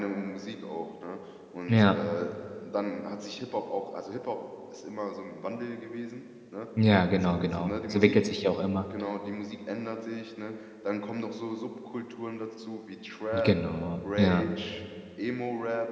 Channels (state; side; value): identical; both; correlation 1.00